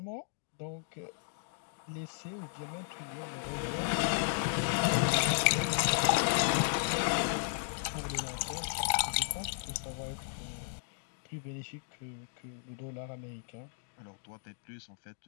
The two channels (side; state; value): right; silent; digital silence